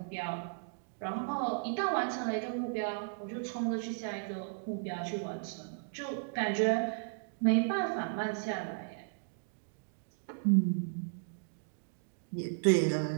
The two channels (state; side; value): silent; left; digital silence